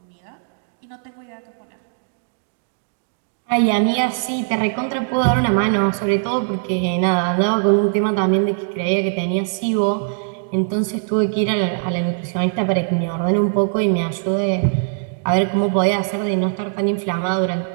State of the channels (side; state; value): left; silent; digital silence